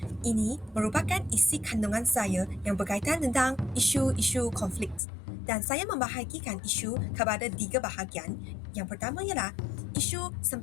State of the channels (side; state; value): right; drops out; at 5.0 s